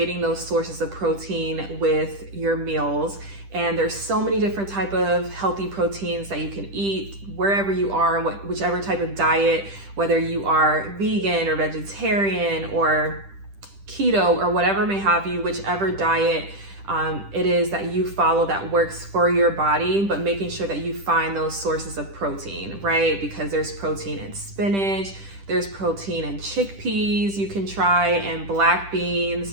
those sources of protein with your meals. And there's so many different type of healthy proteins that you can eat wherever you are, whichever type of diet, whether you are vegan or vegetarian or keto or whatever may have you, whichever diet it is that you follow that works for your body, but making sure that you find those sources of protein, right? Because there's protein in spinach, there's protein in chickpeas you can try, and black beans,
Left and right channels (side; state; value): left; late; 10 ms